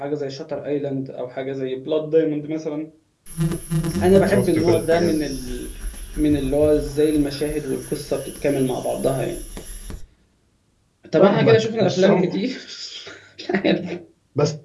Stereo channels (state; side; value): identical; both; correlation 1.00